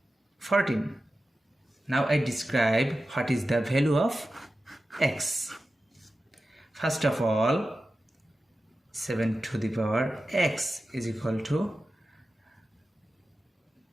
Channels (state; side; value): normal; both; correlation 0.93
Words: 14. Now I describe what is the value of x. First of all, 7 to the power x is equal to